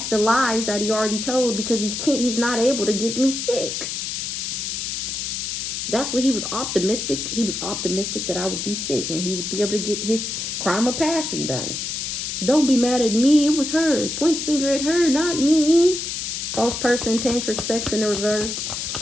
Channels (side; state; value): left; noise; hiss, 4 dB below the sound